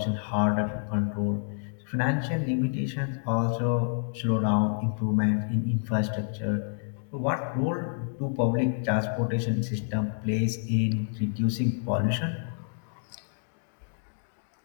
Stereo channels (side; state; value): right; silent; digital silence